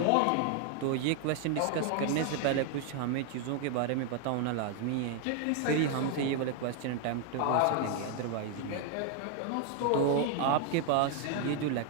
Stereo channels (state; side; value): different; both; correlation 0.01